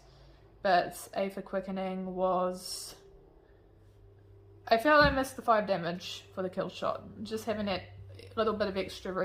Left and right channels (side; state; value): both; identical; correlation 1.00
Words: but Aphid Quickening was... I felt I missed the 5 damage for the kill shot. Just having that little bit of extra